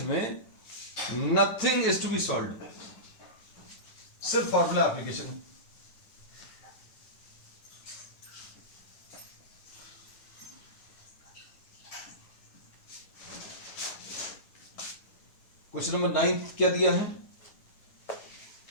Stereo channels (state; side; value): late; right; 9.7 ms